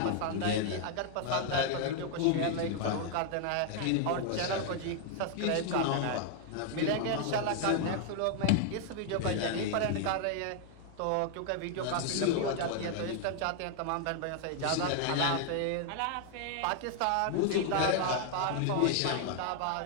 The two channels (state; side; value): different; both; correlation 0.00